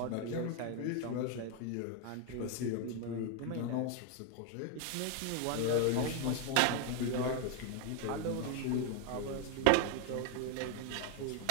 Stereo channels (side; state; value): both; different; correlation 0.01